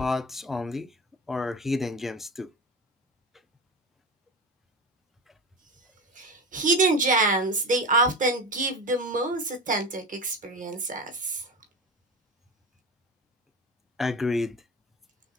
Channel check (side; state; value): both; normal; correlation 0.26